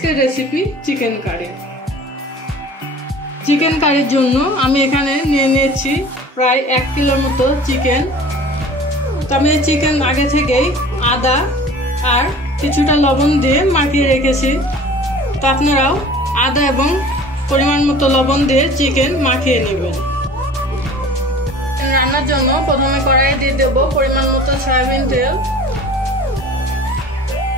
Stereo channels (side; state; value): both; normal; correlation 0.44